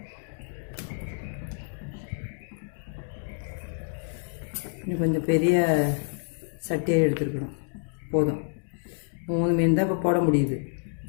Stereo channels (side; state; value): right; silent; digital silence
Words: இன்னும் கொஞ்சம் பெரிய சட்டியாக எடுத்துருக்கணும். போதும், 3 மீன் தான் இப்போ போட முடியுது.